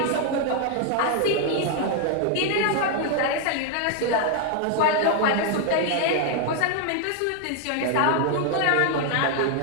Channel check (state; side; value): different; both; correlation 0.00